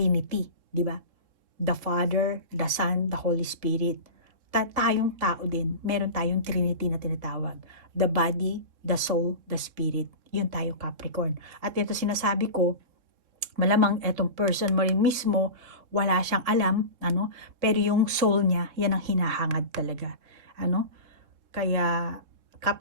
di ba? The Father, the Son, the Holy Spirit. Tayong tao din, meron tayong Trinity na tinatawag. The body, the soul, the spirit. Yun tayo, Capricorn. At ito sinasabi ko, malamang etong person mo rin mismo, wala siyang alam, pero yung soul niya, yan ang hinahangad talaga. Kaya,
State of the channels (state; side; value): late; left; 3.7 ms